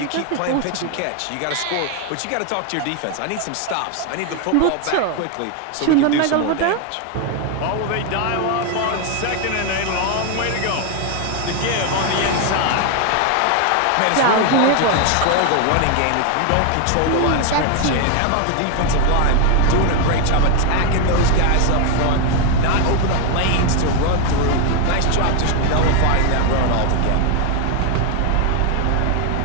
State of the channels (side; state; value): both; different; correlation 0.01